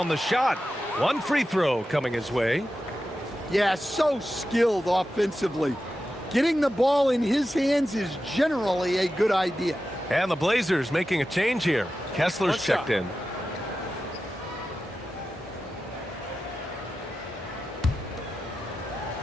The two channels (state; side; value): normal; both; correlation 0.92